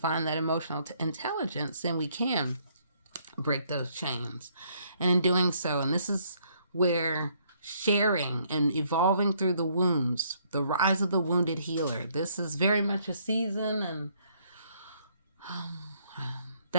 that emotional intelligence, then we can break those chains. And in doing so, and this is where sharing and evolving through the wounds, the rise of the wounded healer. This is very much a season, and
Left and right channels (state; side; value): inverted; both; correlation -0.68